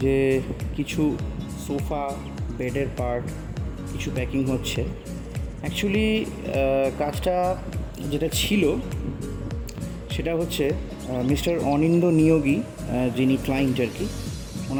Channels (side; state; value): both; identical; correlation 1.00